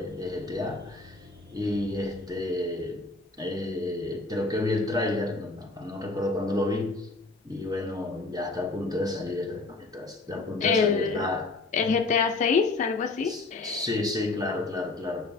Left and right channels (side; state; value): right; quieter; 3.3 dB